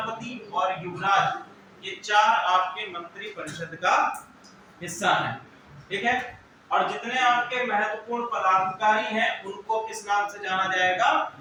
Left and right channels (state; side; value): identical; both; correlation 1.00